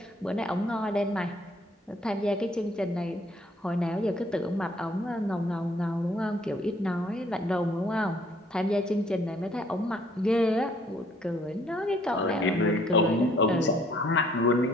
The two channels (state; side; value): normal; both; correlation 0.63